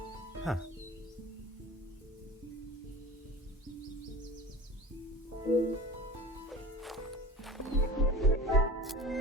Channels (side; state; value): both; normal; correlation 0.37